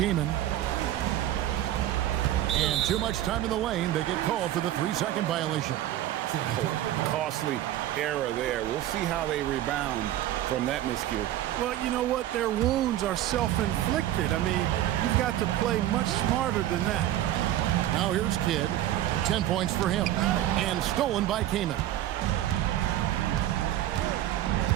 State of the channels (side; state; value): left; quieter; 13.2 dB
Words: And too much time in the lane. They get called for the 3-second violation. Costly error there. We'll see how they rebound from that miscue. Well, you know what? Their wounds are self-inflicted. I mean, you've got to play much smarter than that. Now here's Kidd. 10 points for him. And stolen by Kamen.